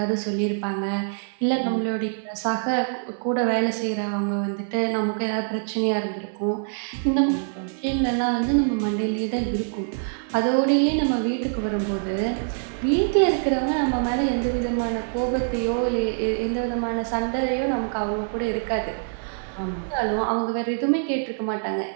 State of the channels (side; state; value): left; silent; digital silence